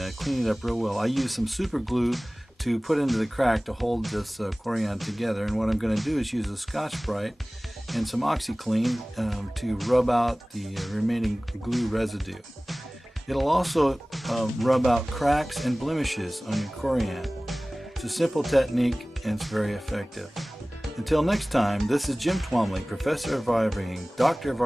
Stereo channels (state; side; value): normal; both; correlation 0.98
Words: clean it up real well. I use some super glue to put into the crack to hold this Corian together, and what I'm going to do is use a Scotch-Brite and some OxyClean to rub out the remaining glue residue. It'll also rub out cracks and blemishes on your Corian. It's a simple technique and it's very effective. Until next time, this is Jim Twomley, Professor of RVing, Doctor of